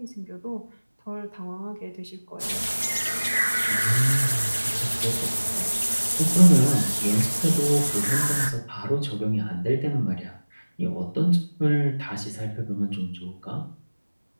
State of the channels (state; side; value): inverted; both; correlation -1.00